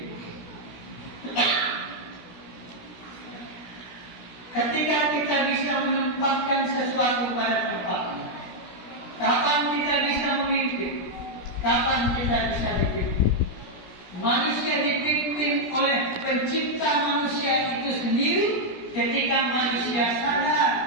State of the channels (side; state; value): right; late; 17 ms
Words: Ketika kita bisa menempatkan sesuatu pada tempatnya, kapan kita bisa memimpin? Kapan kita bisa dipimpin? Manusia dipimpin oleh pencipta manusia itu sendiri ketika manusia sadar